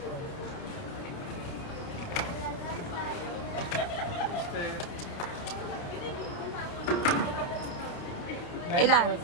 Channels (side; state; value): right; late; 29 ms